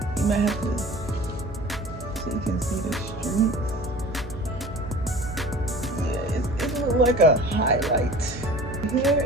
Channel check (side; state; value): both; normal; correlation 0.42